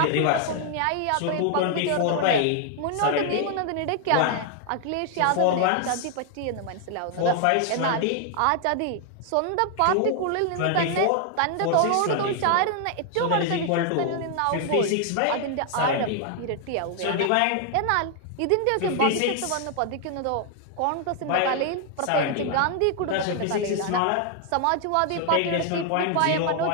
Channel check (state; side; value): different; both; correlation 0.00